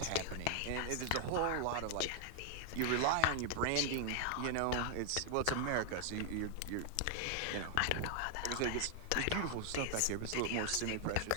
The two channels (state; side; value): different; both; correlation 0.00